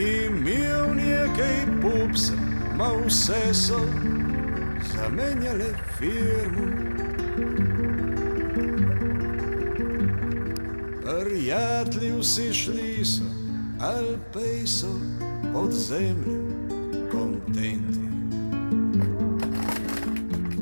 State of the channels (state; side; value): inverted; both; correlation -1.00